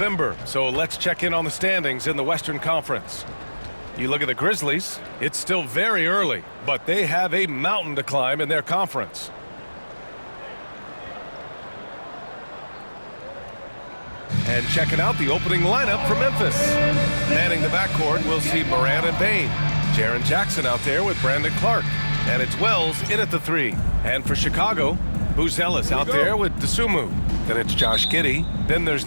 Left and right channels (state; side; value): inverted; both; correlation -1.00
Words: so let's check in on the standings in the Western Conference. You look at the Grizzlies, it's still very early, but they have a mountain to climb in their conference. And checking out the opening lineup for Memphis. Manning the backcourt, we'll see Morant and Bane. Jaren Jackson out there with Brandon Clark. And it's Wells in at the 3. And for Chicago, Buzelis out there with Dosunmu. Then it's Josh Giddey. Then there's